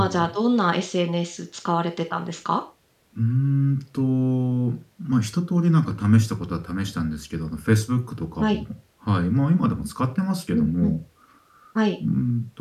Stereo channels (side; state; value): both; identical; correlation 1.00